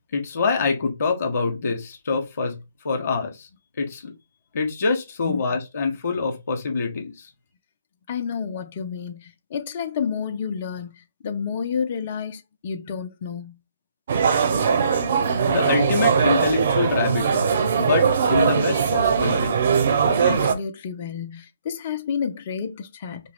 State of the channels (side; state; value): both; inverted; correlation -0.66